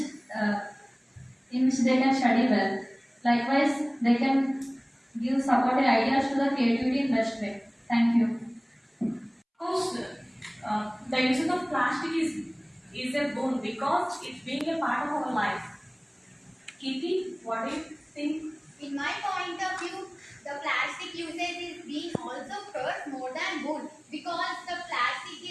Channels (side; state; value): both; identical; correlation 1.00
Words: uh, they can study well. Likewise, they can give supportive ideas to the creativity in best way. Thank you. Of course, the usage of plastic is a boon because it's being a part of our life. Kitty, what do you think? In my point of view, the plastic usage is being also curse more than good because the plastic